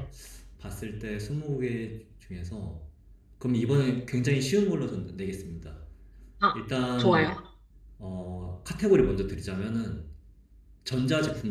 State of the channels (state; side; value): identical; both; correlation 1.00